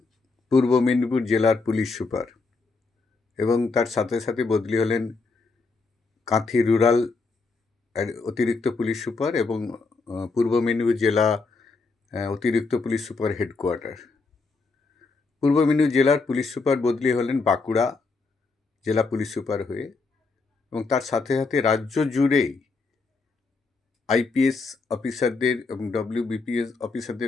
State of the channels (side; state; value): right; quieter; 4.0 dB